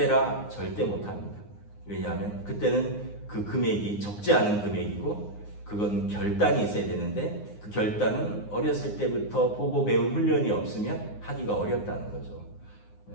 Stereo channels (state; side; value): late; right; 9.7 ms